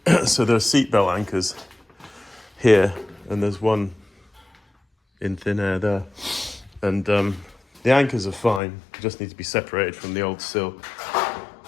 so there are seatbelt anchors here, and there's one in thin air there. And the anchors are fine, just need to be separated from the old sill.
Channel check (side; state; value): right; drops out; at 8.6 s